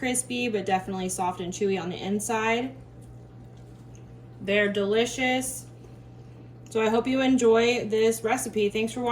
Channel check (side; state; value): both; identical; correlation 1.00